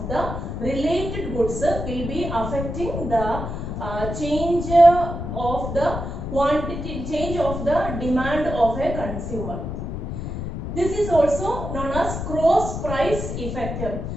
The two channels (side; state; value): left; noise; rumble, 5 dB below the sound